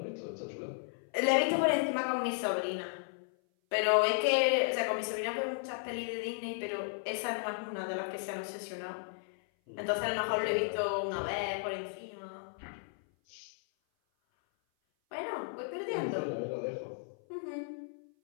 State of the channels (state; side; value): silent; right; 55 dB below the other